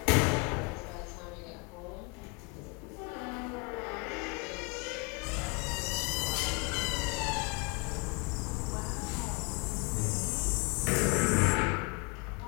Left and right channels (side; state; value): right; quieter; 30.7 dB